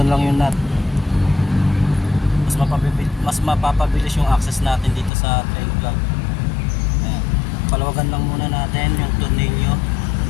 lang yung nut. Mas mapapabilis yung access natin dito sa drain plug. Ayan. Palawagan lang muna natin yung tornilyo.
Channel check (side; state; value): right; drops out; at 5.1 s